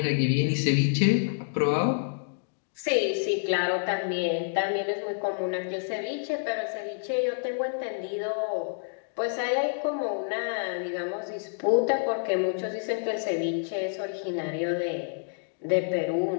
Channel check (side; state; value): right; silent; digital silence